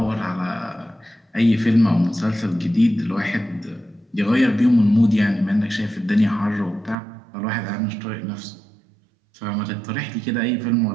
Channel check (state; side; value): drops out; left; at 7.0 s